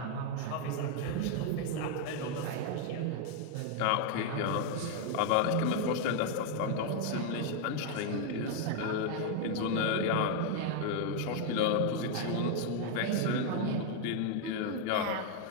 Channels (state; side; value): different; both; correlation 0.01